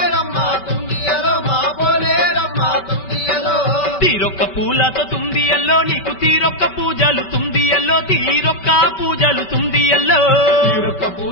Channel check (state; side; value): late; right; 5.2 ms